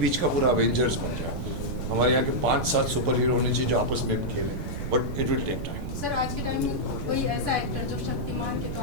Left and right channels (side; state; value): right; noise; rumble, 4 dB below the sound